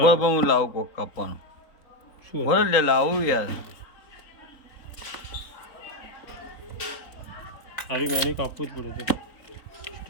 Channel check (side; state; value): right; late; 3.9 ms